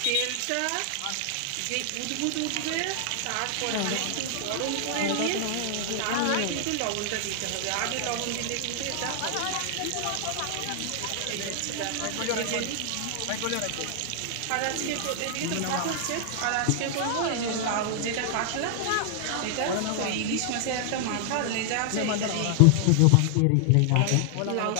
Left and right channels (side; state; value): both; different; correlation 0.00